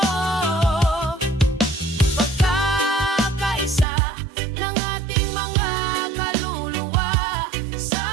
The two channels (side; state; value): left; drops out; at 3.9 s